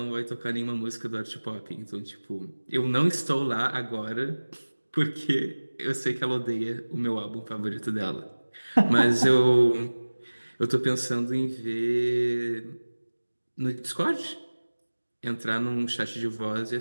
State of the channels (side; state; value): both; inverted; correlation -1.00